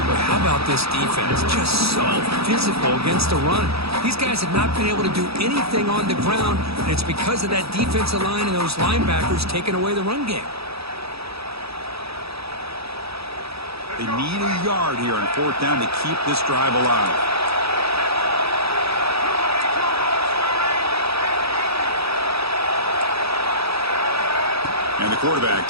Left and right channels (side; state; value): left; late; 0.77 ms